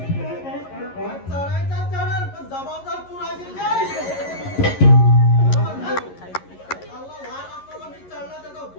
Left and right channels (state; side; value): late; right; 11 ms